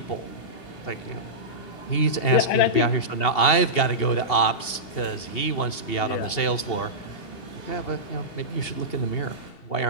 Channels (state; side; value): late; right; 2.7 ms